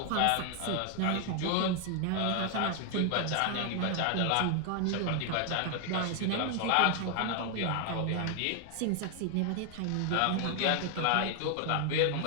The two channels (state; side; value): different; both; correlation 0.00